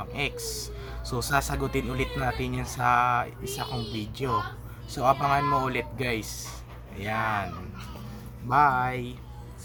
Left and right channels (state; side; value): identical; both; correlation 1.00